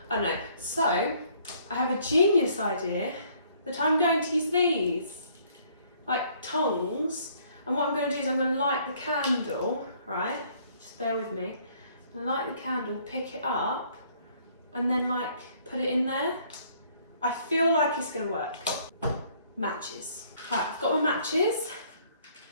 I don't know. So, I have a genius idea that I'm going to use these, like tongs, and what I'm going to do is I'm going to light the candle, right? Just bear with me. I'm going to light the candle, pick it up, and then like put it in there. I feel like it's going to work. Matches. Right, I've got my matches.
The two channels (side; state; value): both; inverted; correlation -0.62